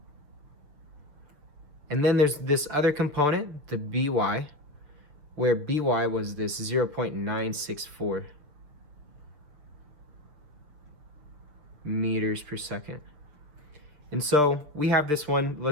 And then there's this other component, the by, where by was this 0.964 meters per second. And so we have this one.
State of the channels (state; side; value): late; left; 6.9 ms